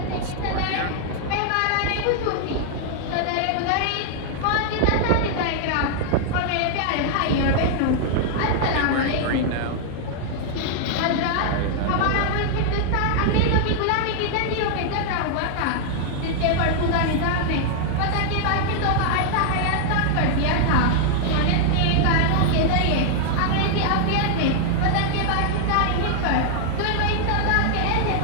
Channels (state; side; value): different; both; correlation -0.01